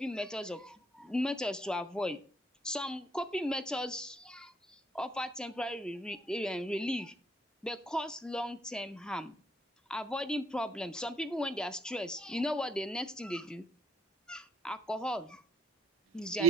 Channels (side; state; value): both; normal; correlation 0.70